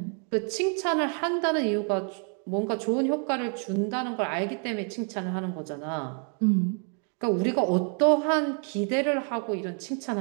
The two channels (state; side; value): quieter; left; 39.9 dB